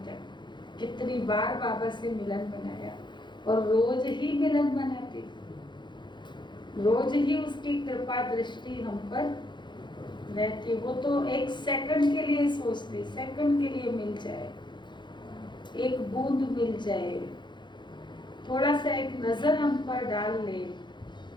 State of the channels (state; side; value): late; right; 0.22 ms